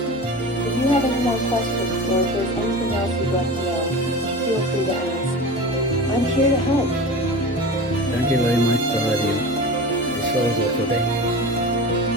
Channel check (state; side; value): normal; both; correlation 0.32